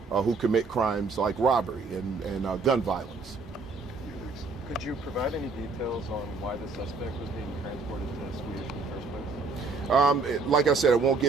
who commit crimes like robbery and gun violence. Could you provide any details on why the suspect was being transported to Swedish in the first place? Like I said, I won't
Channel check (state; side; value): quieter; left; 4.2 dB